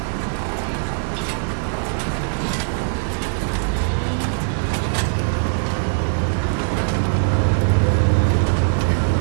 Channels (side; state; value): left; silent; digital silence